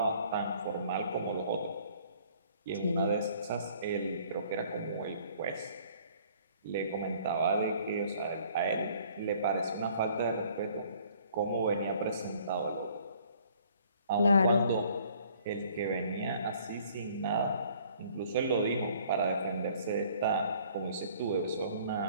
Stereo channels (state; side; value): inverted; both; correlation -0.57